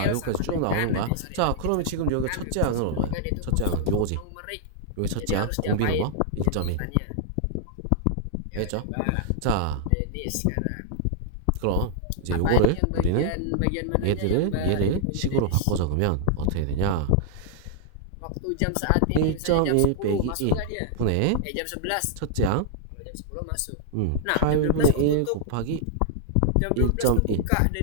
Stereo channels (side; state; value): both; different; correlation -0.01